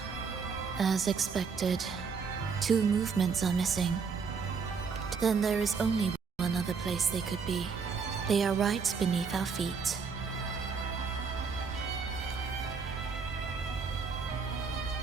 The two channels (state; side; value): quieter; left; 5.5 dB